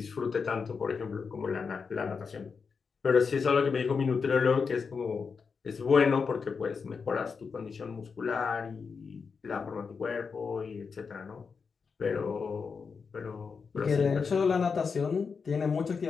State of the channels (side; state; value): right; quieter; 5.4 dB